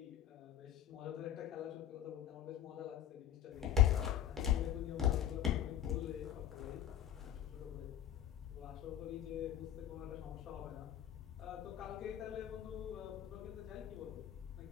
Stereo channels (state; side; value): quieter; right; 10.6 dB